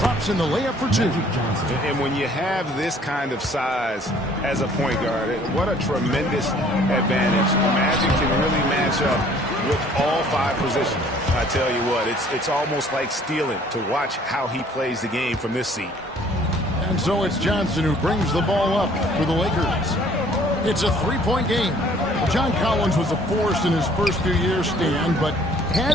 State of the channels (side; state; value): both; normal; correlation 0.57